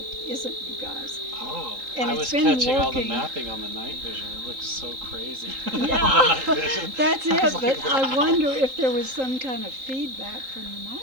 isn't you guys. Oh, And I it's was been catching all the working. mapping on the night vision. It looks so crazy. Yeah, The night vision. that's I it. was But like, I wow. wonder if there was some kind of feedback from the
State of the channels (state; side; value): late; left; 3.8 ms